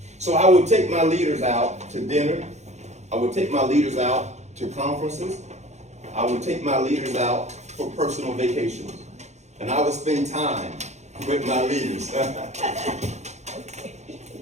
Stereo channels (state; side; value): late; left; 0.33 ms